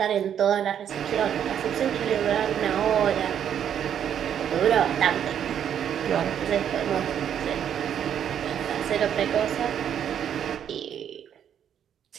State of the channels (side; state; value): left; quieter; 9.1 dB